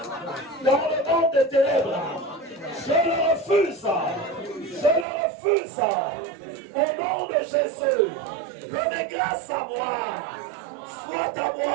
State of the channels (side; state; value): left; drops out; at 5.1 s